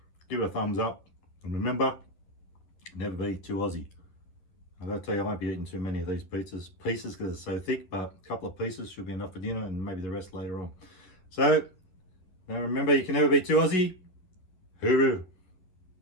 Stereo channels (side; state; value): right; late; 11 ms